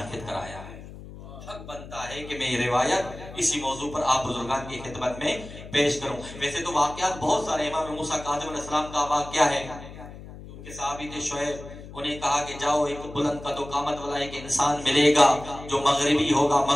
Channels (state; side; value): noise; left; hum, 14 dB below the sound